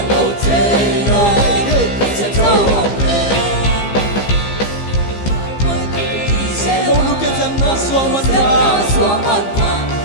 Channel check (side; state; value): right; late; 15 ms